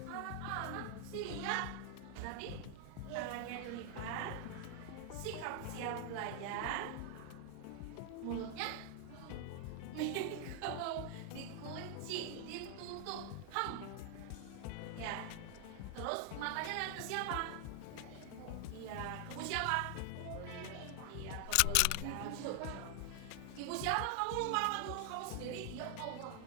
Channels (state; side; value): different; both; correlation 0.00